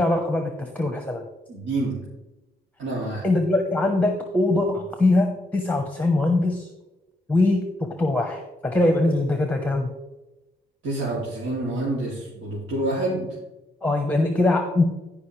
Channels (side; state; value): both; normal; correlation 0.78